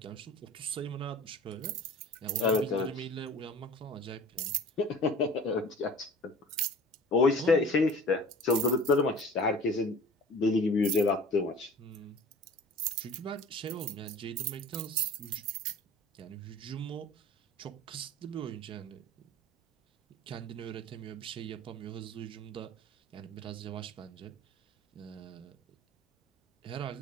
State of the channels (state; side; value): normal; both; correlation 0.43